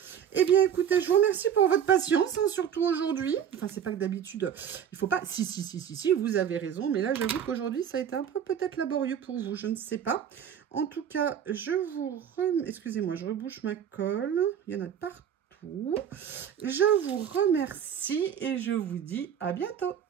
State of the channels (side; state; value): left; quieter; 8.8 dB